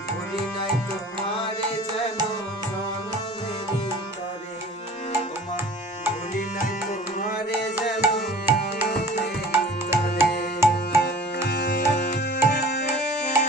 ভুলি নাই তোমারে যেন জনমেরি তরে, ওমা ভুলি নাই তোমারে যেন জনমেরি তরে।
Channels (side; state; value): both; normal; correlation 0.45